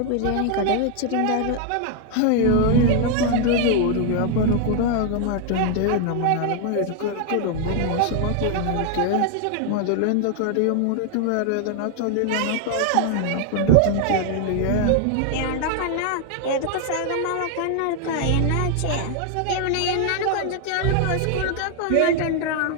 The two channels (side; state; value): both; different; correlation 0.00